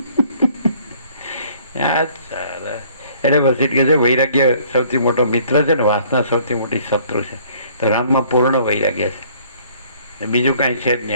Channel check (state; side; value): inverted; both; correlation -0.58